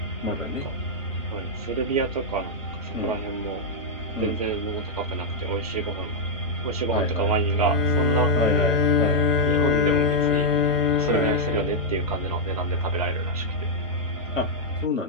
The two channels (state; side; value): normal; both; correlation -0.05